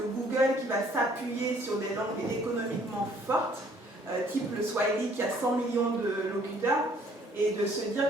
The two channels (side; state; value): both; normal; correlation 0.60